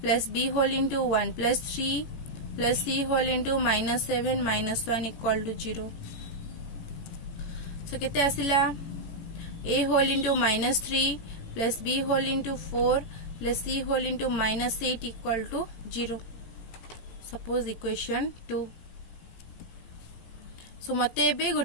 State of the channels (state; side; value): late; right; 18 ms